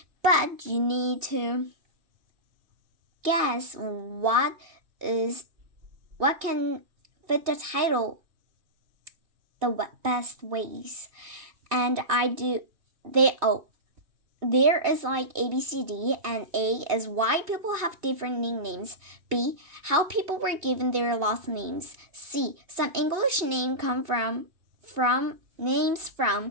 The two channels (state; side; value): late; left; 2.7 ms